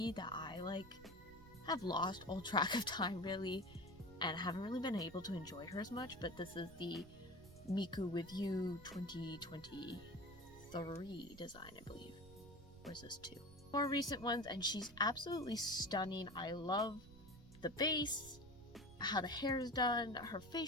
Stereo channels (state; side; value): noise; right; rumble, 18 dB below the sound